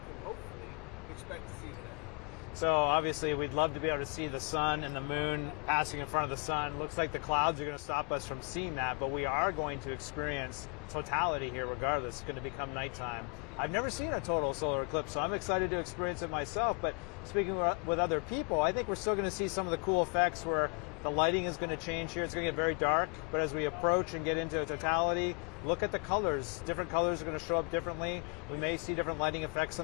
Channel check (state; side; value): quieter; right; 33.6 dB